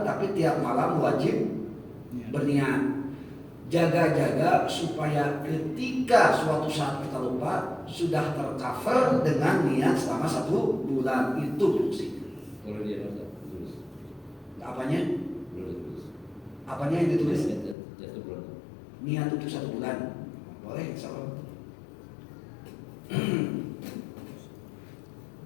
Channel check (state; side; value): drops out; right; at 17.8 s